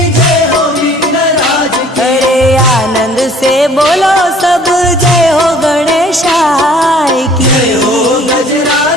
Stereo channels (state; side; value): normal; both; correlation 0.54